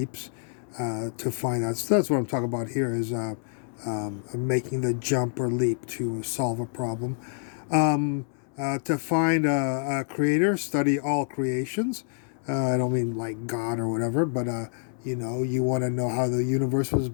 to find out. So that's what I'm talking about here, is making the jump or leap to solve a problem. To find a creator, study all creations. I don't mean like God or whatever, but you want to know how the universe was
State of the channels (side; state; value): right; silent; 59 dB below the other